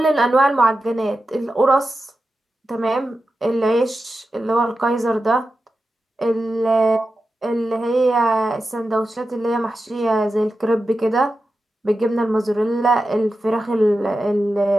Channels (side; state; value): both; normal; correlation 0.91